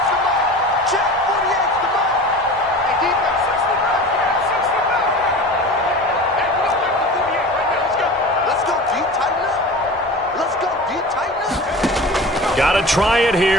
Got to try it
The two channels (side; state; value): both; normal; correlation 0.35